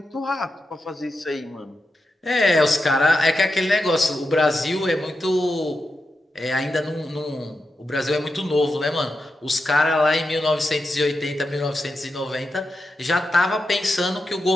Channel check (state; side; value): normal; both; correlation 0.88